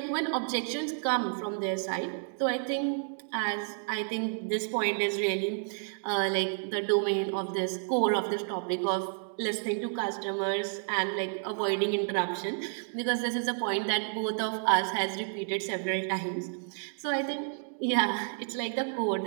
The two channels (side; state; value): left; silent; digital silence